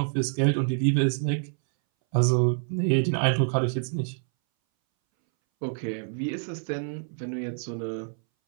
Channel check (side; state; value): left; silent; 60 dB below the other